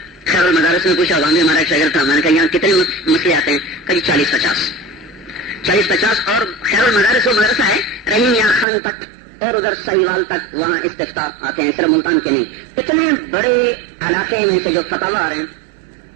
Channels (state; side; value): drops out; left; at 8.7 s